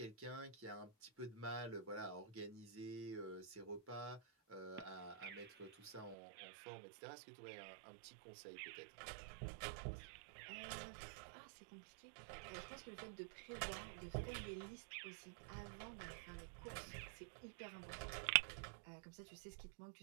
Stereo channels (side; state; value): left; drops out; at 6.2 s